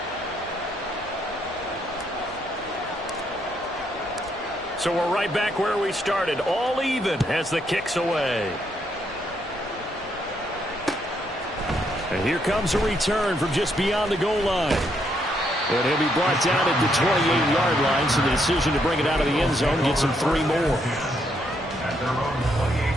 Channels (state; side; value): normal; both; correlation 0.75